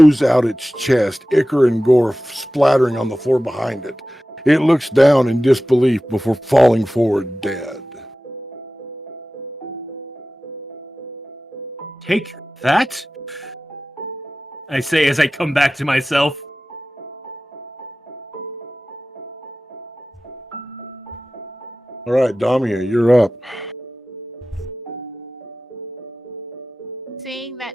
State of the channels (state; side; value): normal; both; correlation 0.95